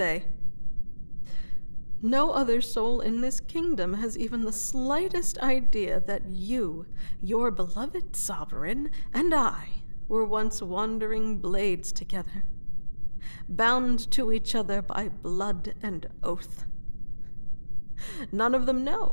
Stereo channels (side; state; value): both; inverted; correlation -1.00